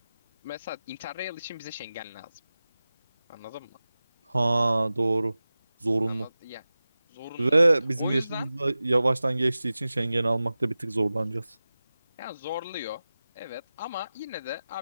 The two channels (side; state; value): both; inverted; correlation -0.96